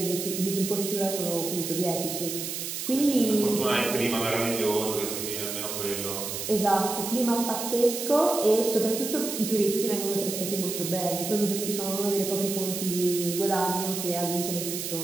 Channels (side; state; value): right; noise; hiss, 5 dB below the sound